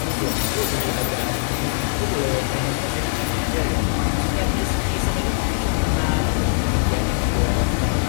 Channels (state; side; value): silent; right; digital silence